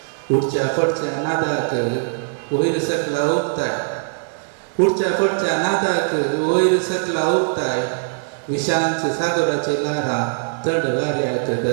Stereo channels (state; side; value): silent; left; 62 dB below the other